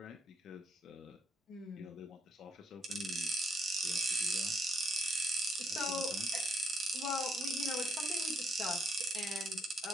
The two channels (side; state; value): both; normal; correlation 0.73